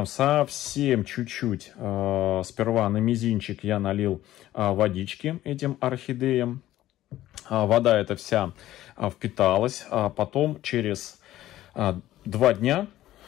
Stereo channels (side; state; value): right; quieter; 14.3 dB